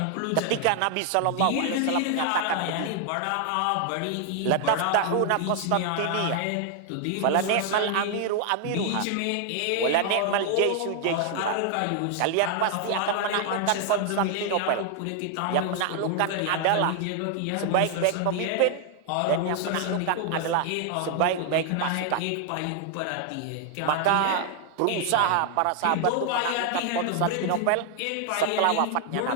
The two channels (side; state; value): both; different; correlation 0.00